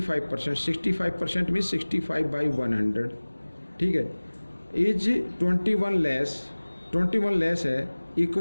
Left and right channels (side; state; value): both; inverted; correlation -1.00